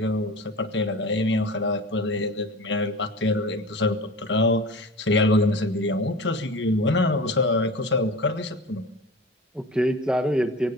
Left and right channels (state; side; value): normal; both; correlation 0.34